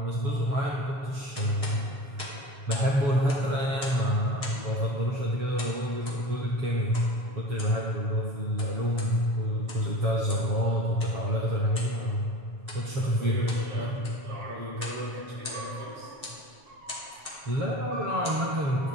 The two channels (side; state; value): left; late; 7.2 ms